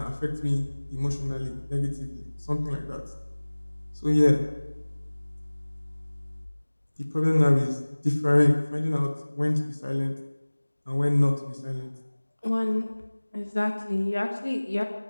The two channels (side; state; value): both; inverted; correlation -1.00